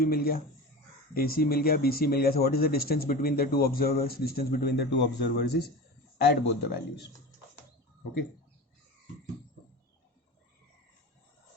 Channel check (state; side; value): normal; both; correlation 0.30